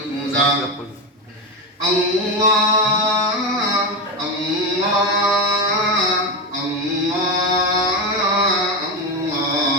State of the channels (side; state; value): both; normal; correlation 0.14